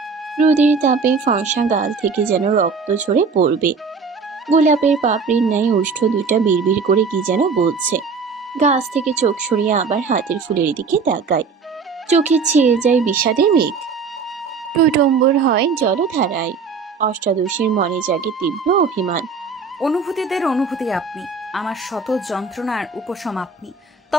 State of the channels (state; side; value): quieter; left; 5.1 dB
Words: রোদের তাপে ফর্সা গাল থেকে যেন রক্ত ঝরে পড়বে। গোলাপের পাপড়ির ন্যায় ওষ্ঠ দুইটা বিড়বিড় করে কি যেন বলছে। গাছ থেকে চোখ সরিয়ে আবার হাতের ফুলের দিকে তাকায়। চোখে ছেয়ে যায় বিষাদের মেঘ। টইটম্বুর হয় জলধারায়। অষ্টাদশীর মনে জাগে তীব্র অভিমান। অনুভূতিদের অনুভূতি আপনি, আমার শত যন্ত্রণার উপশম আপনি,